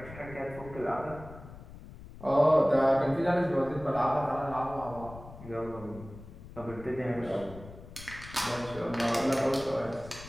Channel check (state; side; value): noise; left; rumble, 16 dB below the sound